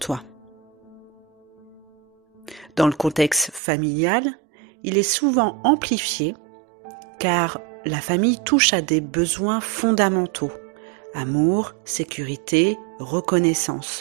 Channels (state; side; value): drops out; left; at 3.6 s